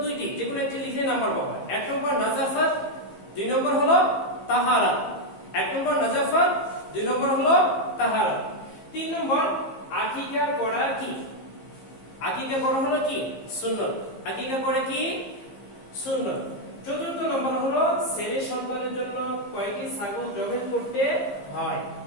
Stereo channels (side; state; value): right; late; 15 ms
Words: 2টি, যেগুলো একটি লিখে নাম্বার পাবা। 1 নম্বর নাজাফাত, 2 নম্বর হলো তাহারা। 1 নম্বর নাজাফাত, 2 নম্বর হলো তাহারা। 3 নম্বর আকিকা করা কি। আকিকা করা হলো কি, সুন্নাত। আকিকা করে কি, সুন্নাত। 4 নম্বর হলো ছেলে সন্তানের জন্য কয়টি ছাগল জবাই করতে হয়।